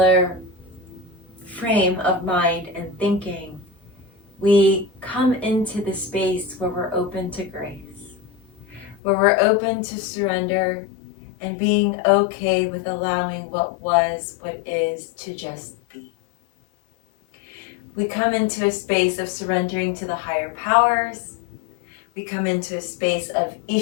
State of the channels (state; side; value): drops out; right; at 9.0 s